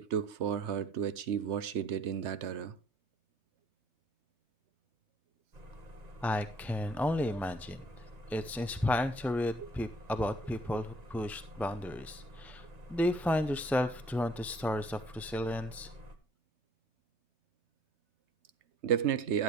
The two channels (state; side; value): normal; both; correlation 0.59